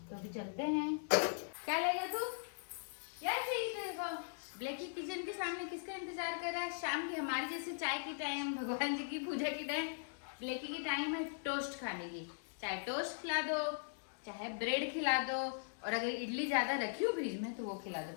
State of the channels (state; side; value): silent; right; digital silence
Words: तो अभी चलते हैं। क्या लेगा तू? यार चाहिए तेरे को? ब्लैकी किचन के सामने किसका इंतजार कर रहा है? शाम की हमारी जैसे चाय की टाइम, भगवान जी की पूजा की टाइम, ब्लैकी की टाइम है टोस्ट खाने की। चाहे टोस्ट खिला दो, चाहे ब्रेड खिला दो, और अगर इडली ज्यादा रखी हो फ्रिज में तो वो खिला